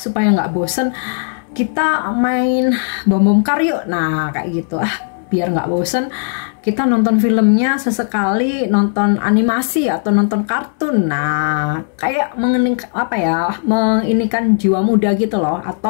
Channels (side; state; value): right; silent; 69 dB below the other